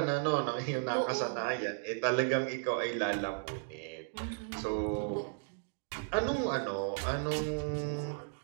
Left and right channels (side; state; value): left; silent; digital silence